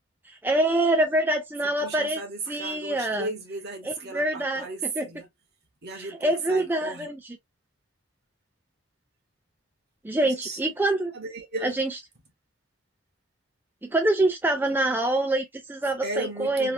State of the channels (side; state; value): both; normal; correlation 0.57